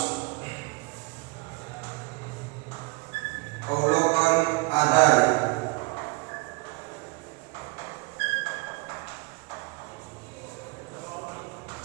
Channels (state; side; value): quieter; left; 26.4 dB